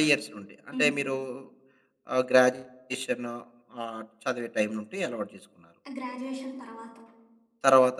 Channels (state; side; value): identical; both; correlation 1.00